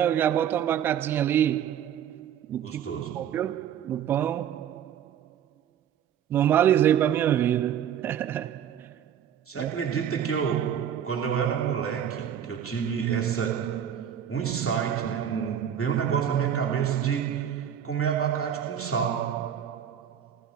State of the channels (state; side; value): quieter; left; 9.3 dB